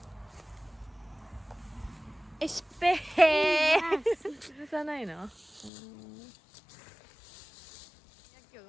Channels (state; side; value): drops out; right; at 5.7 s